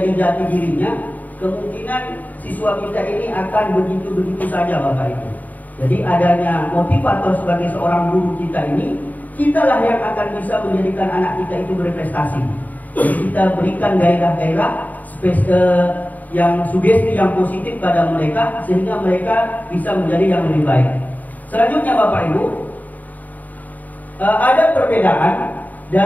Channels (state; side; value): late; right; 0.079 ms